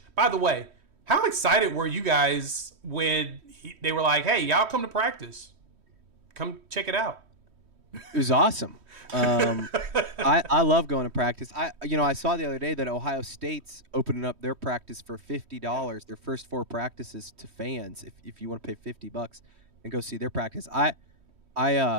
by the way, how excited were you guys when they were like, hey, y'all come to practice. Come check it out. It was awesome. I love going to practice. I saw the other day that Ohio State's opening up their practice for $50, their first 4 practices, to fans, if you want to pay $50. and go see their practice. I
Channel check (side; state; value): left; late; 3.1 ms